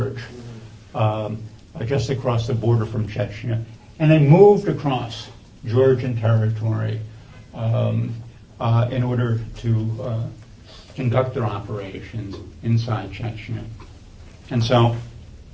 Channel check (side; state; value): both; identical; correlation 1.00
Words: just across the border from Chechnya, and they moved across Georgian territory in order to conduct their operations inside Chechnya. And so